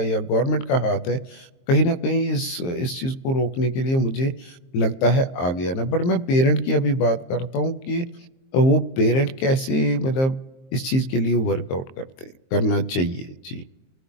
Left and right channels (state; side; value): late; right; 23 ms